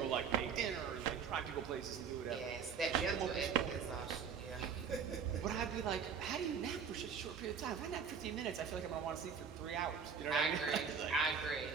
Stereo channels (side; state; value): left; quieter; 6.6 dB